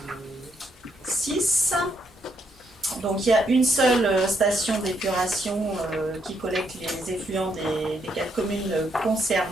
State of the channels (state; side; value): normal; both; correlation 0.76